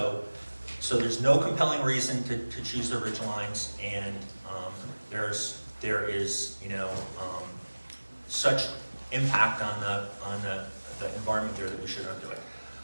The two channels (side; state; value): both; inverted; correlation -1.00